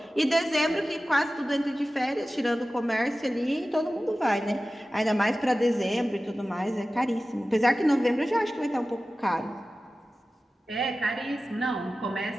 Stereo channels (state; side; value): normal; both; correlation 0.95